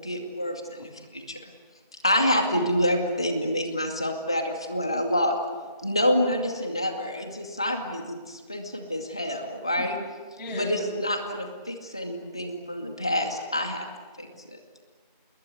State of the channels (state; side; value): inverted; both; correlation -0.65